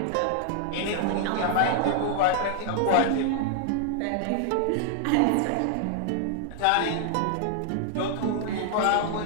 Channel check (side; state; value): both; different; correlation -0.01